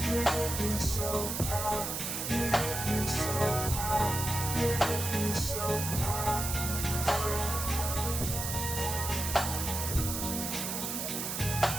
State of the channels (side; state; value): right; noise; hiss, 3 dB below the sound